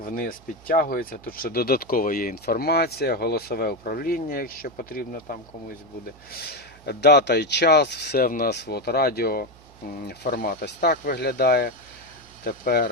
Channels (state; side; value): noise; right; hum, 24 dB below the sound